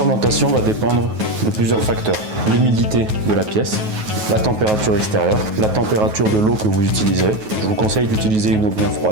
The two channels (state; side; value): late; left; 9.3 ms